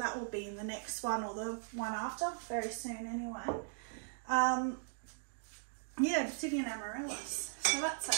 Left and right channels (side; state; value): left; silent; digital silence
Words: will be in the next one or the one after, very soon anyway. Yeah, obsidian amaryllis. So that's a